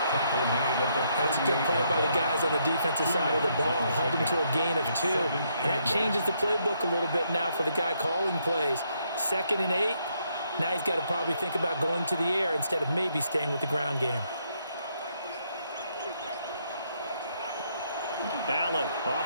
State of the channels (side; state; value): both; inverted; correlation -0.74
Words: That's a good play by the guys on the defensive side of the ball. Held him to a gain of 2. And that changes the playbook a little bit now for the guy calling plays. 2nd and 8. Now he's got to probably think about going to the air instead of maybe staying with the ground game. Allen